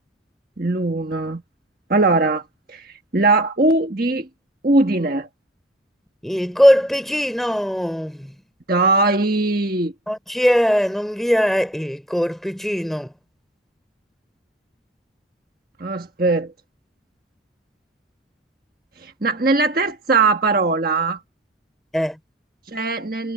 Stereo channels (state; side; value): normal; both; correlation 0.47